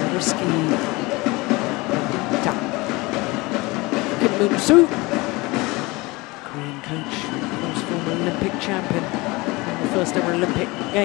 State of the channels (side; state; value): right; quieter; 23.3 dB